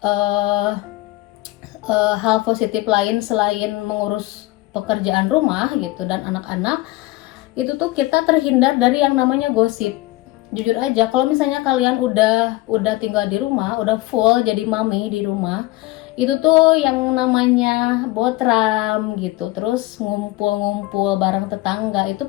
hal positif lain selain mengurus pekerjaan rumah gitu dan anak-anak, itu tuh kita terhindar dari yang namanya gosip. Jujur aja kalau misalnya kalian udah tinggal di rumah, udah full jadi mami di rumah, itu tuh yang namanya botram gitu, terus ngumpul-ngumpul bareng tetangga itu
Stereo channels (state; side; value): quieter; right; 18.9 dB